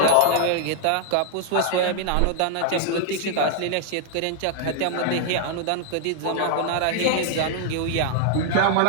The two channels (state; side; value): different; both; correlation 0.00